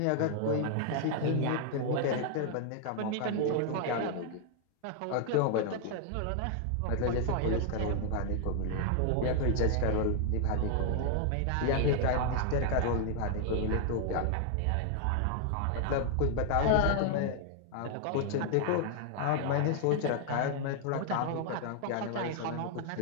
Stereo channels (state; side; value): different; both; correlation 0.00